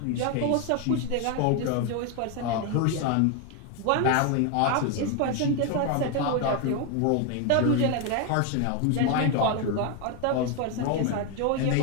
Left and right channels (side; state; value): both; different; correlation 0.01